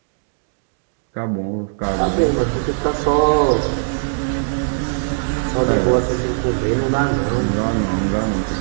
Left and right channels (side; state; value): left; silent; digital silence